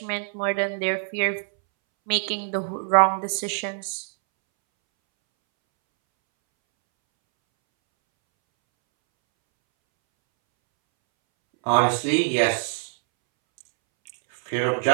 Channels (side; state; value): left; silent; 63 dB below the other